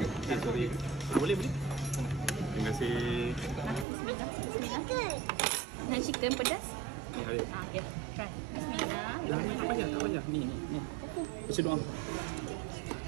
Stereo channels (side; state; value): left; drops out; at 3.9 s